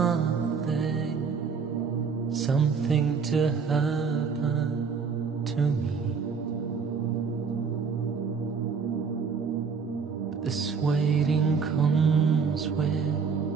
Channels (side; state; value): left; quieter; 5.7 dB